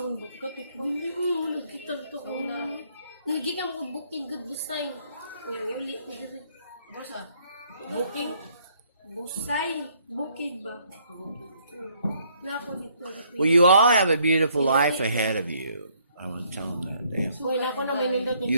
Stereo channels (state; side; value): inverted; both; correlation -0.67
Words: Bukit ko. Oo, nagkita to ko na. Nagigam ko booking good busay. Ngayon, uli ko dito. Basa. Booking. Busay. Bukid ba? Na ako dito. Well, you all have a beautiful life ahead of you. I want to tell them that. Wala ko na may nindot niya.